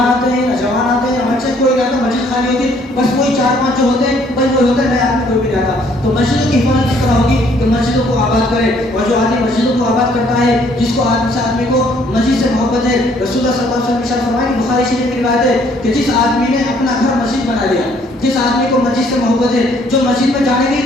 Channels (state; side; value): normal; both; correlation 0.63